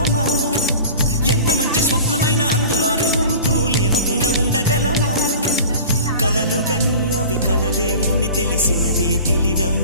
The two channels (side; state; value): both; inverted; correlation -0.40